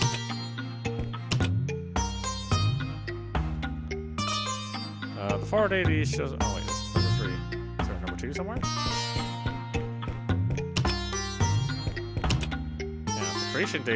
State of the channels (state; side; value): identical; both; correlation 1.00